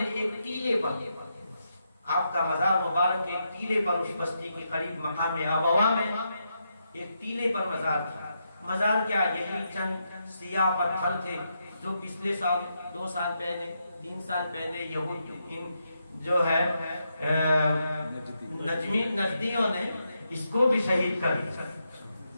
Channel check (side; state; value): both; inverted; correlation -0.83